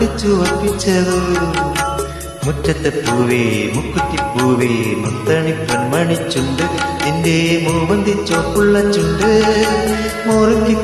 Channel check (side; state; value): both; identical; correlation 1.00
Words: ഒപ്പിച്ചതോ മുറ്റത്തെ പൂവേ മുക്കുറ്റിപ്പൂവേ മുത്തണി പൊന്മണിച്ചുണ്ട് നിന്റെ മൂവന്തി ചോപ്പുള്ള ചുണ്ട്